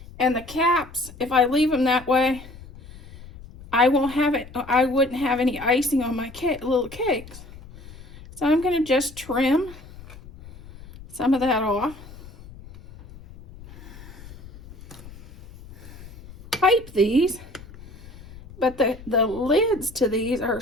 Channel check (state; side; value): noise; left; rumble, 18 dB below the sound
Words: And the caps, if I leave them that way, I wouldn't have any icing on my little cakes. So I'm going to just trim some of that off. Pipe these, but the lids to these are